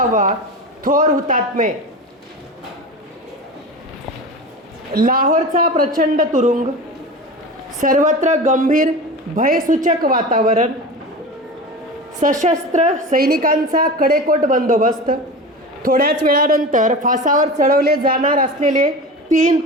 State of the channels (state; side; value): normal; both; correlation 0.30